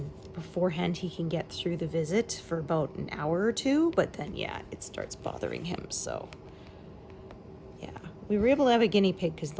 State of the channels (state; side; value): identical; both; correlation 1.00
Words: beforehand, he can get through the visit for about an hour or two, but then yeah, it starts bothering him. So yeah, we were able to have a guinea pig because